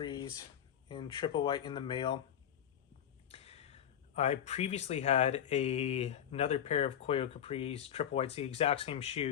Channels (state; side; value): quieter; right; 9.7 dB